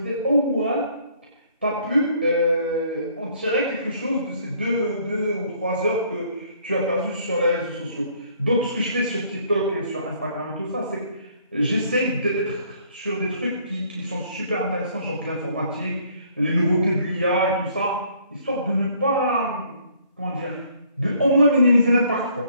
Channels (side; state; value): both; inverted; correlation -0.62